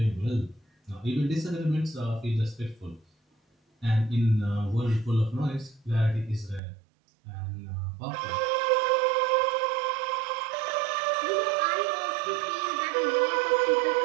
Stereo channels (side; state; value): left; drops out; at 6.6 s